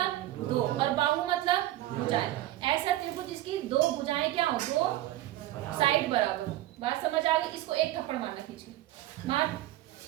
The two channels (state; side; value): quieter; left; 15.2 dB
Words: दो, और बाहु मतलब भुजाएं। ऐसा त्रिभुज जिसकी दो भुजाएं क्या हो? दो साइड बराबर हो। बात समझ आ गई? इसको एक थप्पड़ मारना, खींच मार,